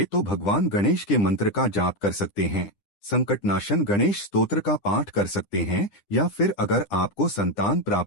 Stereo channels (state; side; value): late; right; 10 ms